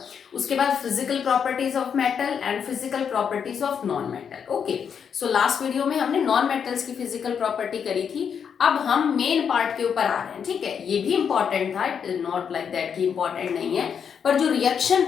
उसके बाद physical properties of metal and physical properties of non metal. Okay, so last video में हमने नॉन मेटल्स की फिजिकल प्रॉपर्टी करी थी। अब हम मेन पार्ट के ऊपर आ रहे हैं, ठीक है। ये भी इंपॉर्टेंट था, it is not like that कि इंपॉर्टेंट नहीं है, पर जो रिएक्शन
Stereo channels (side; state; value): right; quieter; 7.3 dB